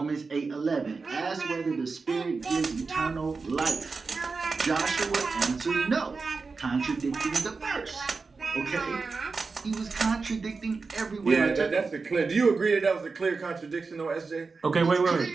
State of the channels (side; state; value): left; quieter; 4.4 dB